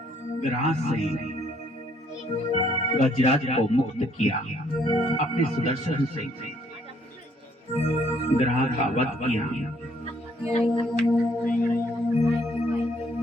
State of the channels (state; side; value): normal; both; correlation 0.66